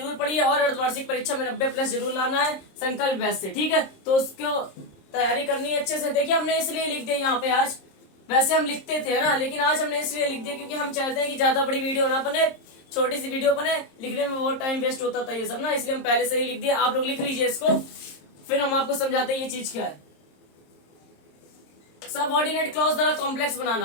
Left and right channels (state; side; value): late; right; 26 ms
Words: पढ़िए और अर्धवार्षिक परीक्षा में 90+ जरूर लाना है संकल्प बैच से। ठीक है, तो उसको तैयारी करनी है अच्छे से। देखिए, हमने इसलिए लिख दिया यहाँ पे आज, वैसे हम लिखते थे ना, लेकिन आज हमने इसलिए लिख दिया क्योंकि हम चाहते हैं कि ज्यादा बड़ी वीडियो ना बने, छोटी सी वीडियो बने, लिखने में बहुत टाइम वेस्ट होता था ये सब ना, इसलिए हम पहले से ही लिख दिया। आप लोग लिख लीजिए इसको, फिर हम आपको समझाते हैं ये चीज क्या है। सबऑर्डिनेट क्लॉज द्वारा कॉम्प्लेक्स